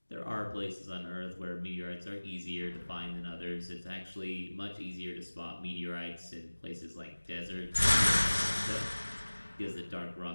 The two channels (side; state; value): both; inverted; correlation -1.00